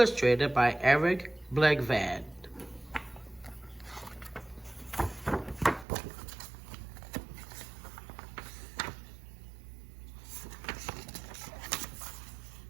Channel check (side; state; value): left; drops out; at 5.9 s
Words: by Eric Blegvad.